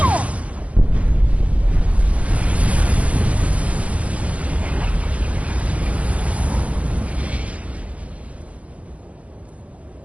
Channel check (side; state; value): left; late; 0.065 ms